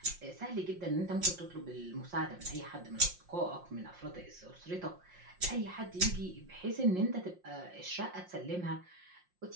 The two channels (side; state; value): left; late; 5.6 ms